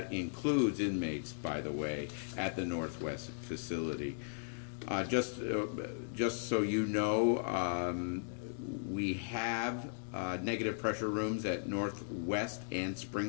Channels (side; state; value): right; silent; digital silence